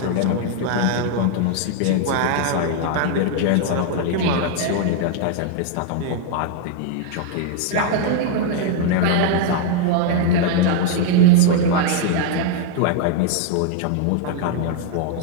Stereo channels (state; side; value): different; both; correlation 0.00